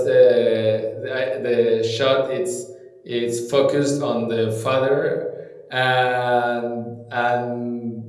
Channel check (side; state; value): both; identical; correlation 1.00